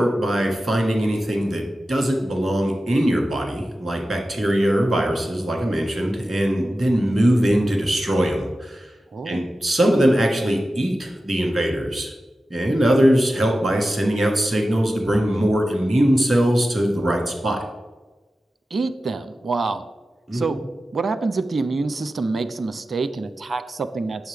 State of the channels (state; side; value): normal; both; correlation 0.93